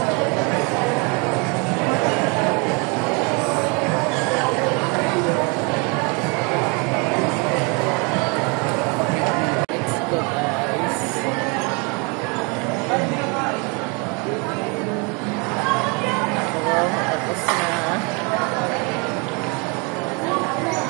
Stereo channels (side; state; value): left; quieter; 31.4 dB